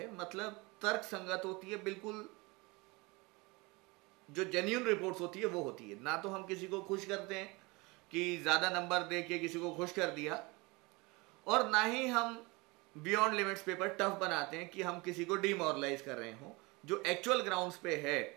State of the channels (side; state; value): left; quieter; 25.3 dB